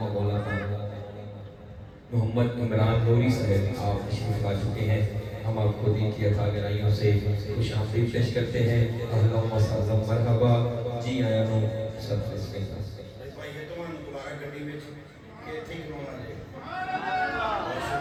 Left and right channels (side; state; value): both; identical; correlation 1.00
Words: مولانا محمد عمران نوری صاحب آپ تشریف لا چکے ہیں. ہم آپ کو دین کی عطا گرائیوں سے خوش آمدید پیش کرتے ہیں. اللہم صل مرحبا جی آیا نو سب سے بھائی یہ تو دوبارہ گڈی میں یہ تھی کرونا لے. بہت